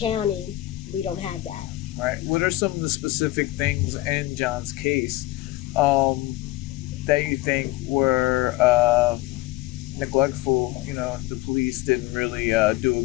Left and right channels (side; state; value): right; quieter; 17.6 dB